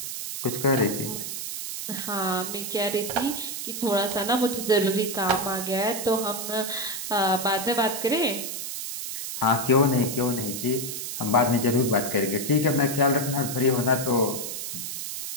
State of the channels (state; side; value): noise; right; hiss, 5 dB below the sound